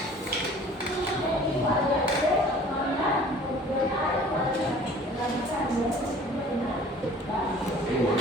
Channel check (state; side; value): normal; both; correlation 0.49